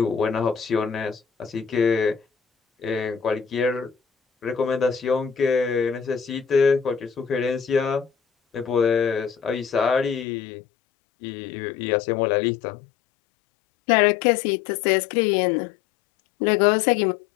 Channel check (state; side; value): drops out; right; at 10.2 s